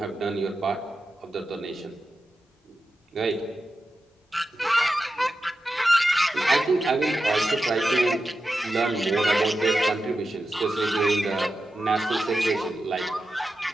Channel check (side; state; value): both; normal; correlation 0.90